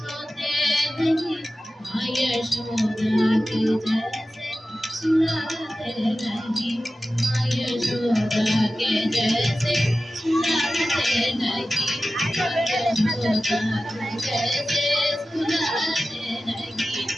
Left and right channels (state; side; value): normal; both; correlation 0.95